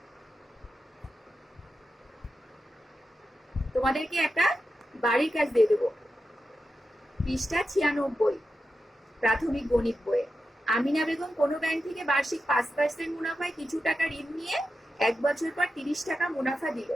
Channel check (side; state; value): both; normal; correlation 0.90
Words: তোমাদেরকে একটা বাড়ির কাজ দিয়ে দেবো। পৃষ্ঠা 96 প্রাথমিক গণিত বইয়ে। আমিনা বেগম কোনো ব্যাংক থেকে বার্ষিক 5% মুনাফায় কিছু টাকা ঋণ নিয়ে 1 বছর পর 30 টাকা মুনাফা দিল।